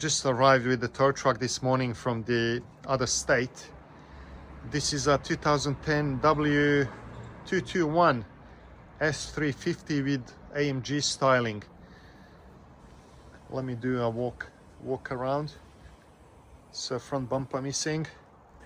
arrived with the tow truck this morning from the other state. This is a 2010 W221 S350 with AMG styling. Let me do a walk around. So front bumper missing.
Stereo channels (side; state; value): both; identical; correlation 1.00